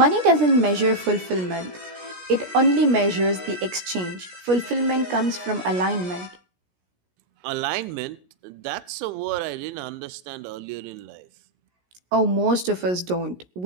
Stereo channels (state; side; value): late; left; 17 ms